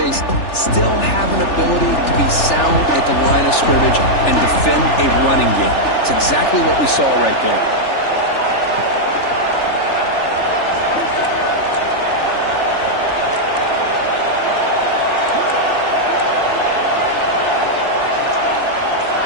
still have an ability to be sound at the line of scrimmage and defend a running game. It's exactly what we saw right there.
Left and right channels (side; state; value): right; late; 3.4 ms